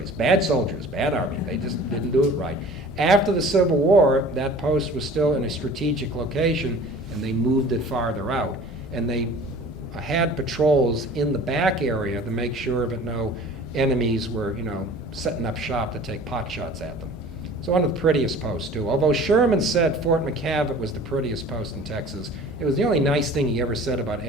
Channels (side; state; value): right; noise; hum, 25 dB below the sound